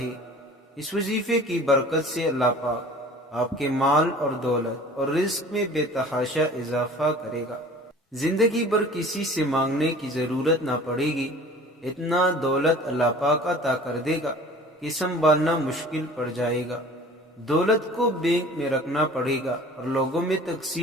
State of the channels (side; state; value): both; normal; correlation 0.45